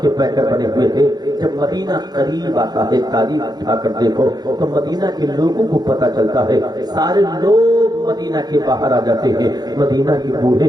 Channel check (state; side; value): late; left; 0.19 ms